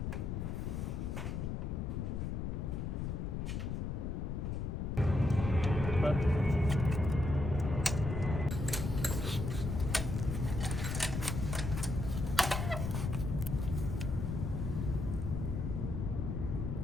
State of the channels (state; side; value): noise; left; rumble, 2 dB below the sound